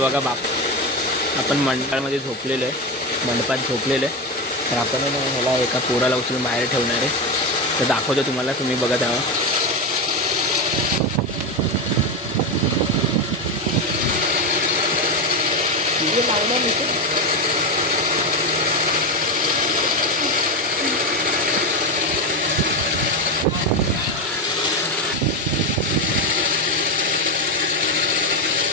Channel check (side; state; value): both; normal; correlation 0.14